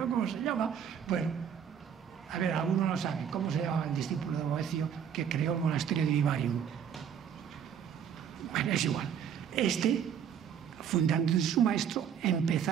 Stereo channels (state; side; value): quieter; left; 8.3 dB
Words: cómo se llama, bueno, a ver, alguno lo sabe, ¿cómo se llama el discípulo de Boecio que creó el monasterio de Vivarium? Bueno, es igual. Fundando su maestro,